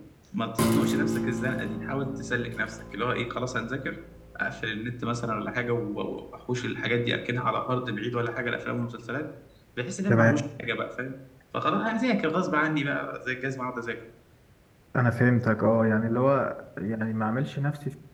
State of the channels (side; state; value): both; identical; correlation 1.00